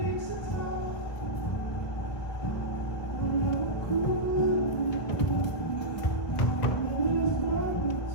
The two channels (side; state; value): right; late; 1.5 ms